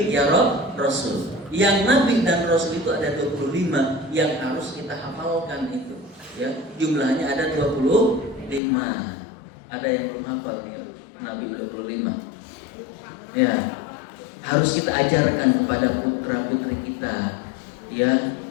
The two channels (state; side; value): drops out; right; at 8.6 s